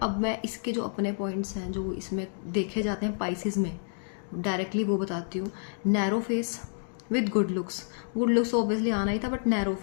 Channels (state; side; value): silent; right; digital silence